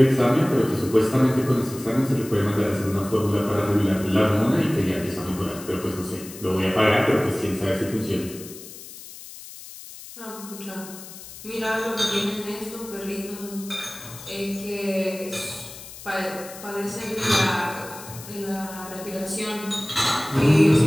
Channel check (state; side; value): noise; left; hiss, 15 dB below the sound